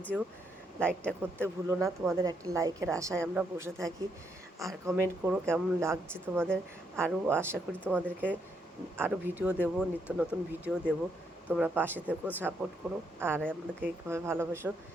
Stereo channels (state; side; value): normal; both; correlation 0.76